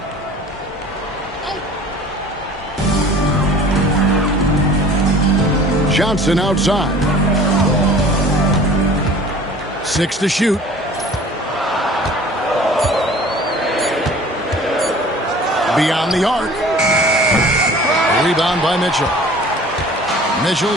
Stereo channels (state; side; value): normal; both; correlation 0.46